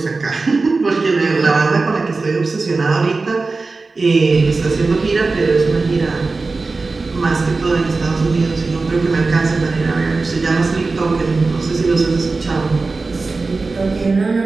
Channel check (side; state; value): left; quieter; 3.8 dB